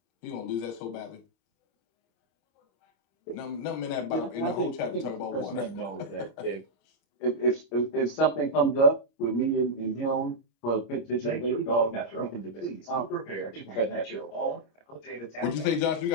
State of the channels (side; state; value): right; late; 26 ms